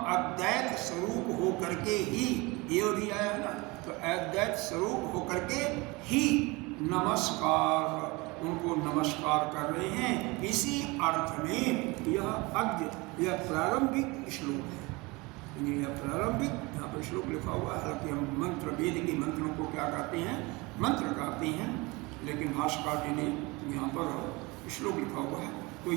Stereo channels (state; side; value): quieter; left; 24.8 dB